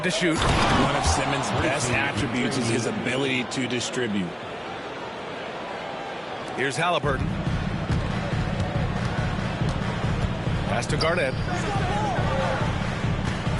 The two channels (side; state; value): both; identical; correlation 1.00